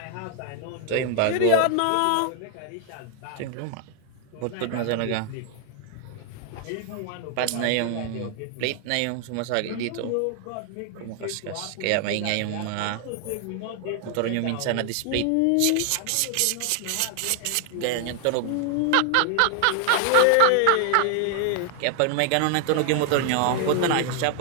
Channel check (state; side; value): different; both; correlation 0.00